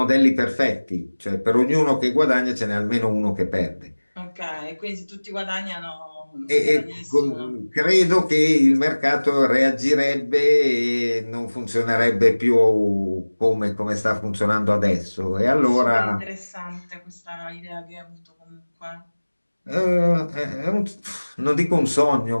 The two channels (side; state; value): both; inverted; correlation -1.00